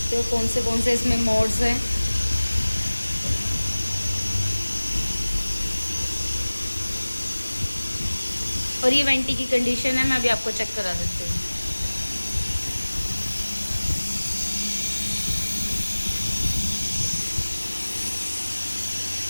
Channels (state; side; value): inverted; both; correlation -1.00